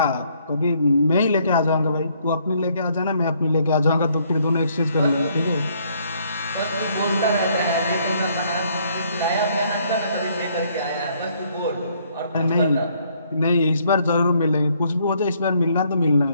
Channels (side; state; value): both; inverted; correlation -0.67